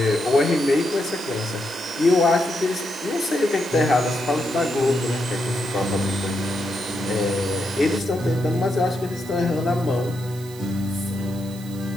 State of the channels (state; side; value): noise; right; hiss, 19 dB below the sound